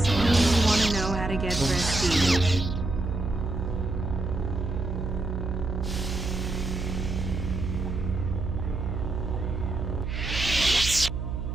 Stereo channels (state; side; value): noise; right; hum, 3 dB below the sound